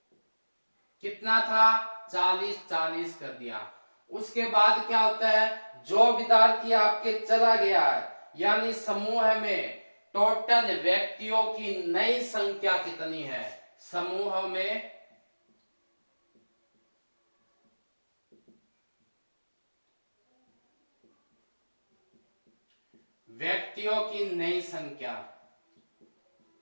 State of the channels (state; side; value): inverted; both; correlation -1.00